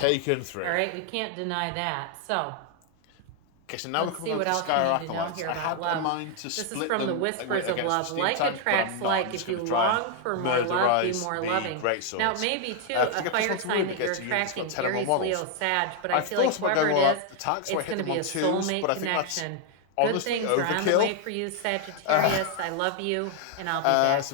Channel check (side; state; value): both; different; correlation 0.00